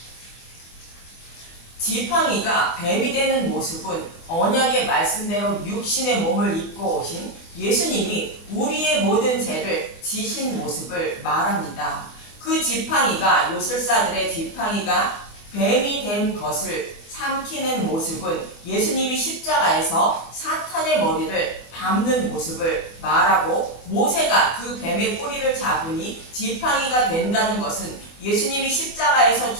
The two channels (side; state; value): right; late; 24 ms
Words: 지팡이가 뱀이 되는 모습은 언약의 말씀대로 육신의 몸을 입고 오신 예수님이 우리의 모든 죄를 지신 모습을 말합니다. 그 지팡이가 요술사들의 지팡이가 뱀이 된 것을 삼키는 모습은 예수님이 십자가에서 사탄의 머리를 밟는 모습을 말하고 모세가 그 뱀의 꼬리를 잡으니 지팡이가 된다는 것은 예수님이 십자가에서